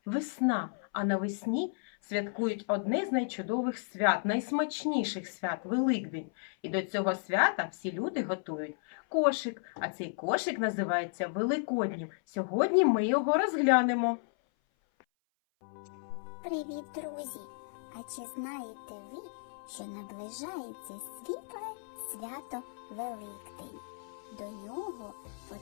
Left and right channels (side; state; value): right; silent; 55 dB below the other